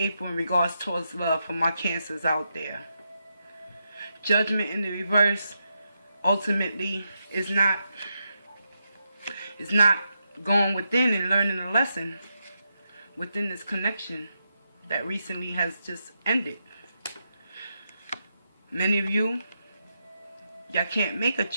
in regards towards love for my Cancers out there. Judgment in the reverse ultimately is not going within and learning a lesson within this connection that recently has just ended. Many of y'all can't make a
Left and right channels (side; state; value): both; inverted; correlation -0.84